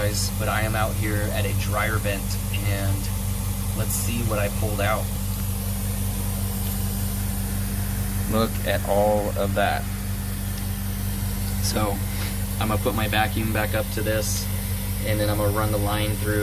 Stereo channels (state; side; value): identical; both; correlation 1.00